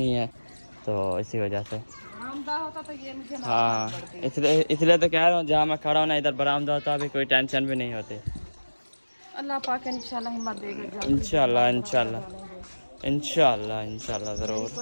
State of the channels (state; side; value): inverted; both; correlation -1.00